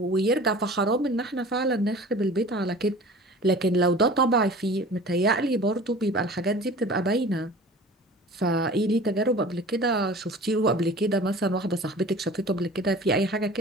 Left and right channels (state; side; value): normal; both; correlation 0.42